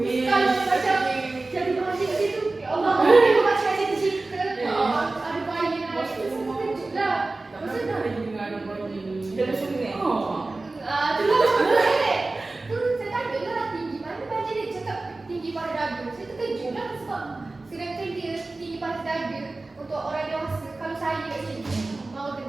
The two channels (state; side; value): quieter; left; 3.3 dB